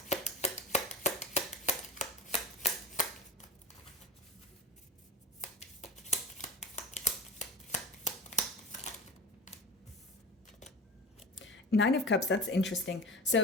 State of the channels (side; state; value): both; normal; correlation 0.31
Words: Nine of Cups, that's interesting.